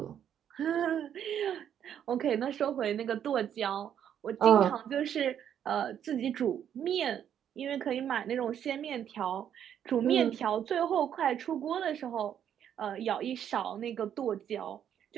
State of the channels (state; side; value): quieter; left; 9.4 dB